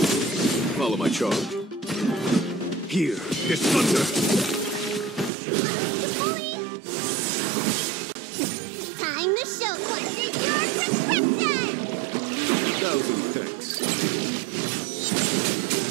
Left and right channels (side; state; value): left; drops out; at 5.3 s